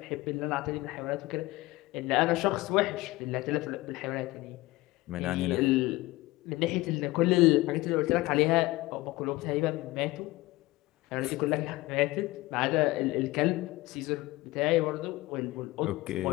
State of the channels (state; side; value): quieter; right; 19.8 dB